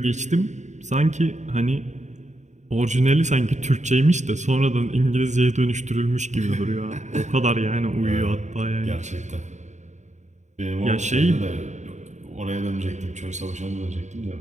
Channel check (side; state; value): left; late; 0.34 ms